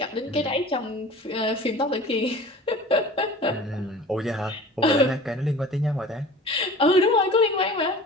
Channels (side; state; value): both; normal; correlation 0.41